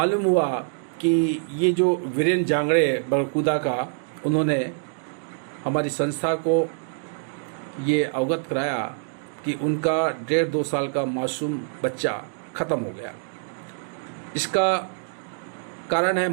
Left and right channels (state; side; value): silent; left; digital silence